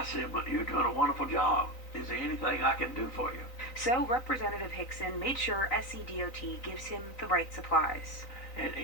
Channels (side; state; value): right; late; 3.9 ms